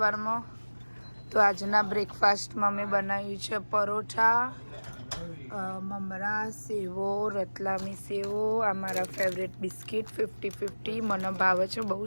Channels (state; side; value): inverted; both; correlation -1.00